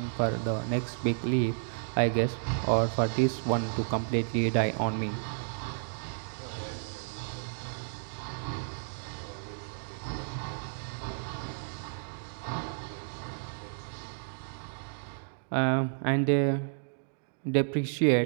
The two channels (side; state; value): left; silent; digital silence